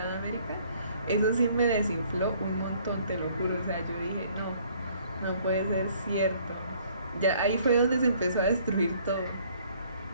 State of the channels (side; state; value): both; inverted; correlation -0.60